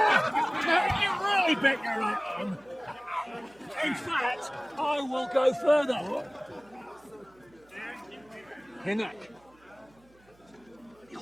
You really bet your right arm. In fact, I will go further. Hinnock.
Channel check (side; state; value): right; noise; hum, 30 dB below the sound